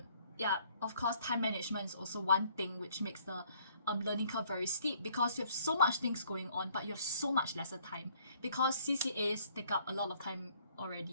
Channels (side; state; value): both; inverted; correlation -0.62